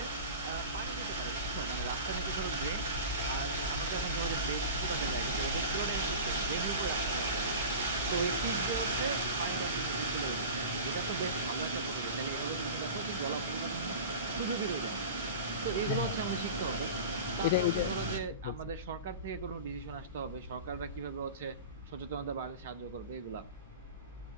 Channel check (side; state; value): both; inverted; correlation -0.34